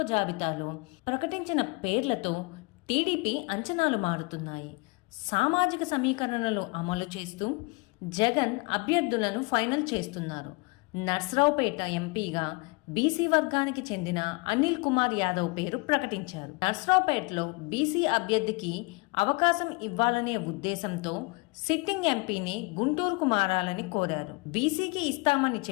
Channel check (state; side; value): quieter; right; 27.7 dB